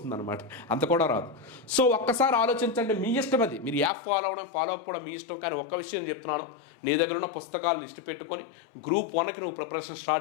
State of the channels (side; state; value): right; drops out; at 3.9 s